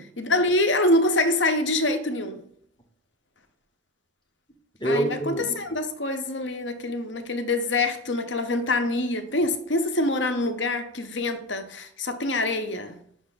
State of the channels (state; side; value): normal; both; correlation 0.18